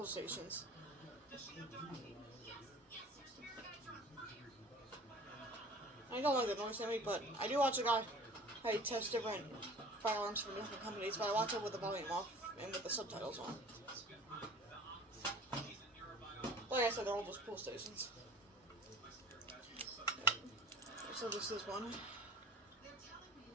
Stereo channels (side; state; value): both; normal; correlation 0.45